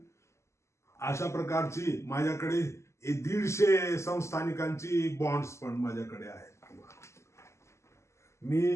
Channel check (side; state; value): right; late; 0.13 ms